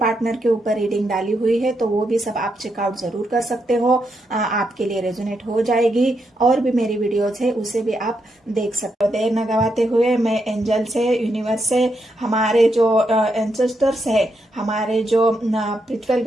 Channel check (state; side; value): normal; both; correlation 0.82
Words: के ऊपर रीडिंग डाली हुई है। तो वो भी सब आप चेकआउट जरूर कर सकते हो, आपके लिए रेजोनेट हो जाएगी। और भी मेरी वीडियोस है उसे भी आप देख सकते हो। देर न गवाते हुए मैं एंजल से, यूनिवर्स से, हमारे जो एंसेस्टर्स है, हमारे जो स्पिरिचुअल